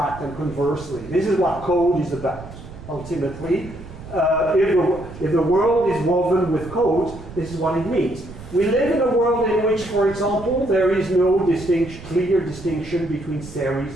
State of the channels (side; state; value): right; noise; rumble, 15 dB below the sound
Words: and conversely. This is what code is about, ultimately. If the world is woven with code, this is what it means. We live in a world in which, for example, there is no clear distinction between